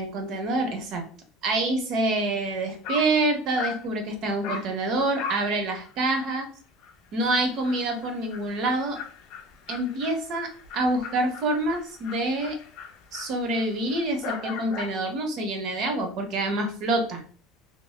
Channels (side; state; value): both; normal; correlation 0.40